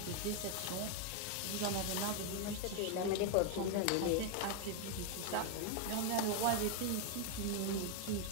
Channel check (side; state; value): both; different; correlation 0.01